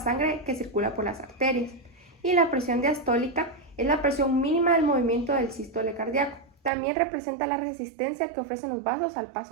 que circula por las arterias. Y la presión diastólica es la presión mínima del movimiento del sístole cardíaco. También representa la resistencia que ofrecen los vasos al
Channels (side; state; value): left; drops out; at 6.7 s